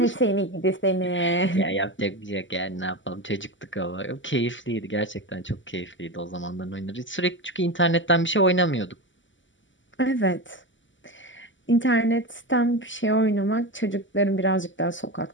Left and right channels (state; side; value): late; right; 0.55 ms